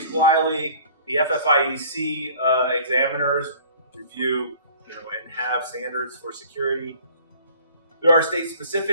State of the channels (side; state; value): both; inverted; correlation -0.50